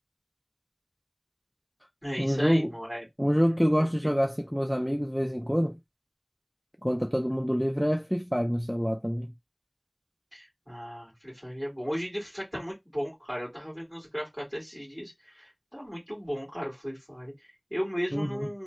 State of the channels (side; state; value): both; identical; correlation 1.00